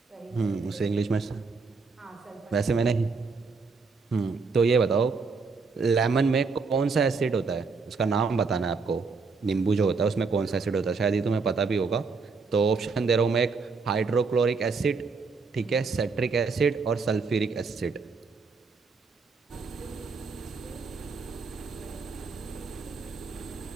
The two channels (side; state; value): left; quieter; 4.6 dB